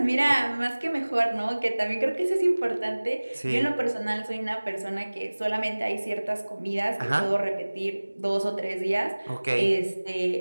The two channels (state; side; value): inverted; both; correlation -1.00